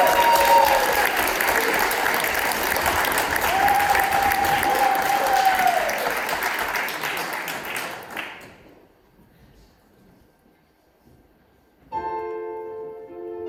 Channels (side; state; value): both; identical; correlation 1.00